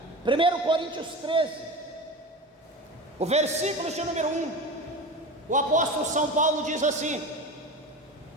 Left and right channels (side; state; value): both; normal; correlation 0.28